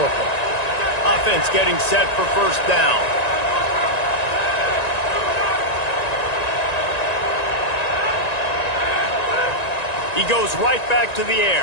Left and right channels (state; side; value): late; right; 1.9 ms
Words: Offense getting set for first down. He goes right back to the